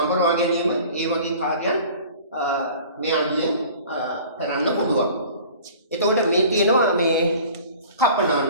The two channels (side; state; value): both; inverted; correlation -0.45